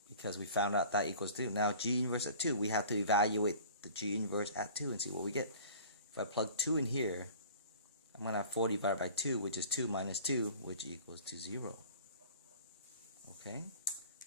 Because we found out that equals 2. Now g inverse at 2, we have to evaluate the g inverse at 2 and see what we get. If I plug 2 in here, I'm going to have 4 divided by 2, which is 2 minus 2, which equals to 0. Okay,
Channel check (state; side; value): inverted; both; correlation -0.45